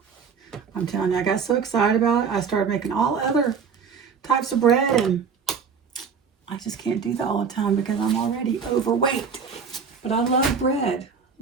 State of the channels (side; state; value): left; quieter; 6.0 dB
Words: I'm telling you, I got so excited about it. I started making all other types of bread, and I just can't do that all the time because I'm already overweight. But I love bread.